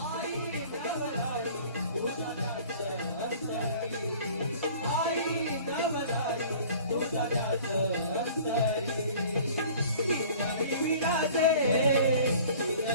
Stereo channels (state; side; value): inverted; both; correlation -0.48